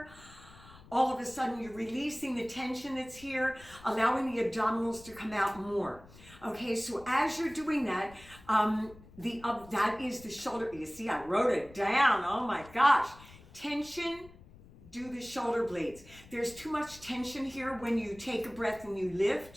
All of a sudden you're releasing the tension that's here, allowing the abdominals to come out more. Okay, so as you're doing that, that is the shoulder. You see, I wrote it down. Oh my gosh. Tension, do the shoulder blades. There's too much tension here when you take a breath and you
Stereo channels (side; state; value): left; noise; rumble, 21 dB below the sound